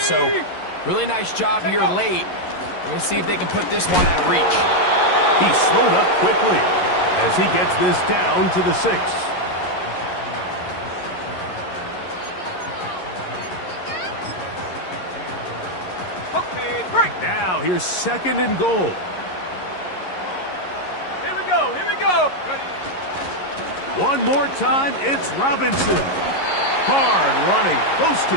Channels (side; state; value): right; late; 11 ms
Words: really nice job here late. We're going to see if they can put this one out of reach. He slowed up quickly as he gets this down to the 6. Now here's 2nd and goal. Here we go, here we go. Ready. One more time, it's Robinson. Hard running, close to